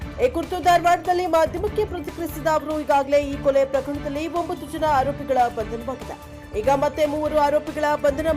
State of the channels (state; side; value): identical; both; correlation 1.00